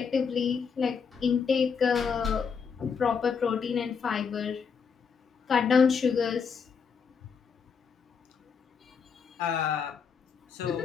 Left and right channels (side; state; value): right; quieter; 6.1 dB